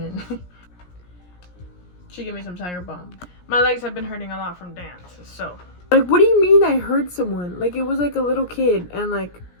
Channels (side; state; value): right; late; 17 ms